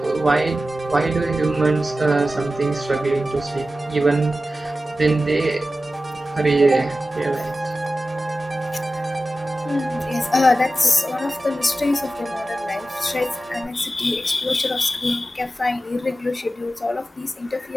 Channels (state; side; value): normal; both; correlation 0.94